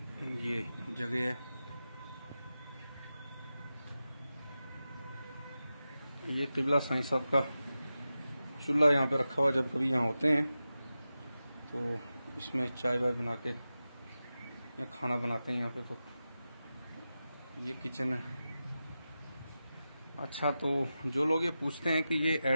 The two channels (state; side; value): inverted; both; correlation -0.93